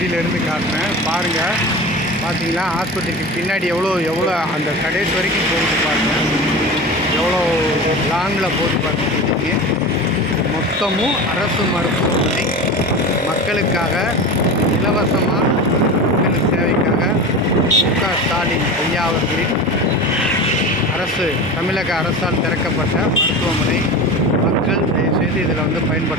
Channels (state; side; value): normal; both; correlation 0.30